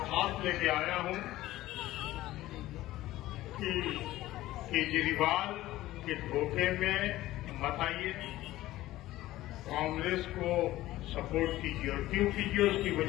लेके आया हूं कि केजरीवाल के धोखे में मत आइए, कांग्रेस को सपोर्ट कीजिए। और क्यों कीजिए उसकी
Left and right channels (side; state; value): right; quieter; 16.0 dB